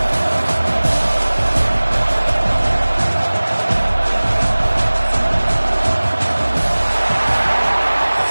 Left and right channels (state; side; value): inverted; both; correlation -1.00